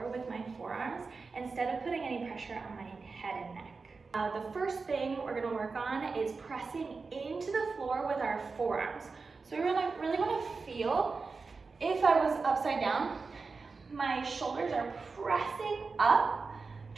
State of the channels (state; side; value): quieter; left; 4.4 dB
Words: with my forearms instead of putting any pressure on my head and neck. The first thing we're going to work on is pressing into the floor with our forearms. So we really want to feel, if I was upside down, my shoulders are pressing up